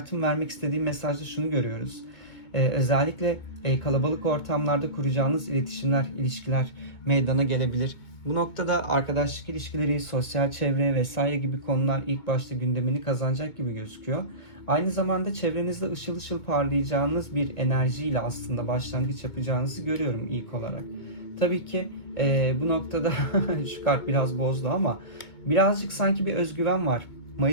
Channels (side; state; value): right; late; 2.2 ms